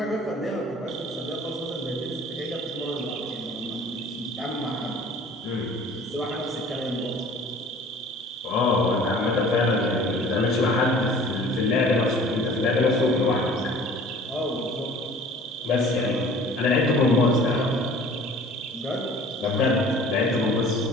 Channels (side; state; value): both; normal; correlation 0.48